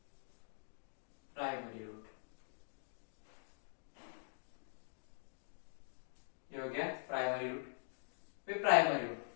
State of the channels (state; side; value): silent; right; digital silence